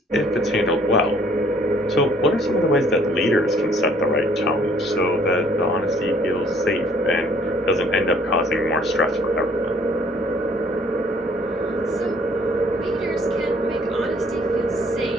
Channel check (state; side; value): normal; both; correlation 0.60